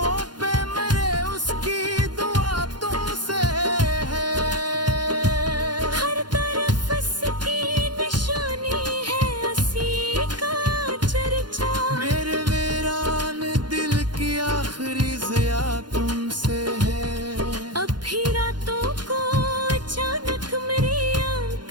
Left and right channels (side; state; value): left; late; 0.71 ms